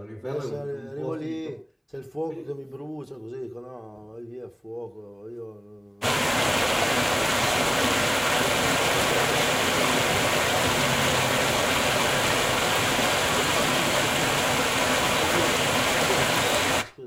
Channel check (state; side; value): identical; both; correlation 1.00